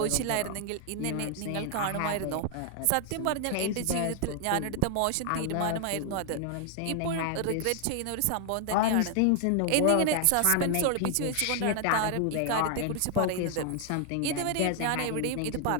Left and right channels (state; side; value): different; both; correlation 0.00